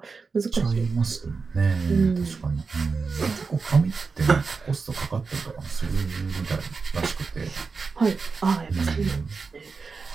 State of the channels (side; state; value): left; quieter; 4.7 dB